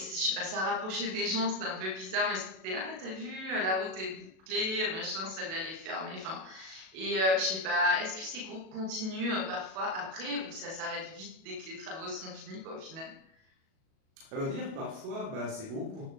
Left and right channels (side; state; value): left; late; 37 ms